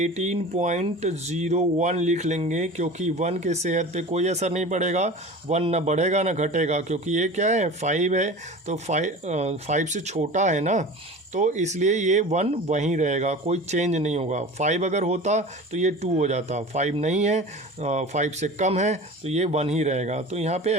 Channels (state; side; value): normal; both; correlation 0.36